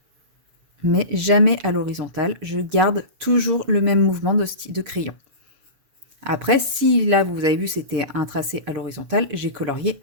Mais jamais à l'horizontale. Je garde toujours le même mouvement de crayon. Après, si là, vous avez vu, c'était un tracé à l'horizontale, j'ai colorié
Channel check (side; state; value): left; late; 7.1 ms